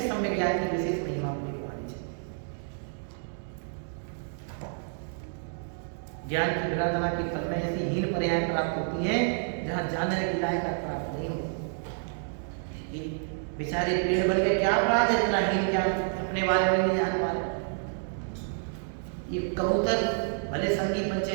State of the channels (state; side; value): silent; left; digital silence